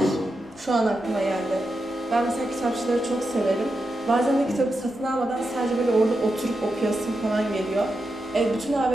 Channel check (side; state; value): left; noise; rumble, 28 dB below the sound